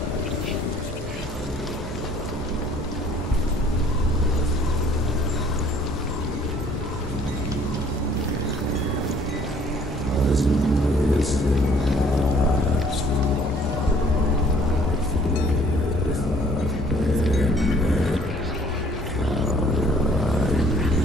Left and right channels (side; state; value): both; normal; correlation 0.58